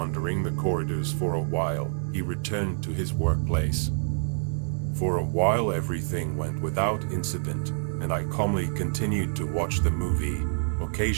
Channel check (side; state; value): left; silent; digital silence